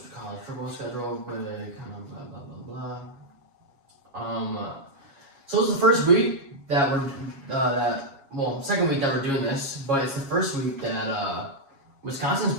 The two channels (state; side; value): late; left; 7.3 ms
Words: college football schedule with kind of blah blah blah blah. So it's the first week that we're second week that we're doing this, but it's the first week that Wisconsin's